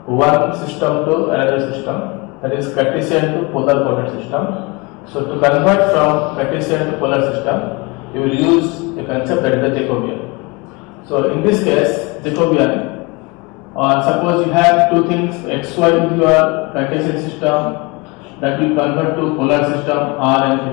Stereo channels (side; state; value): right; quieter; 26.6 dB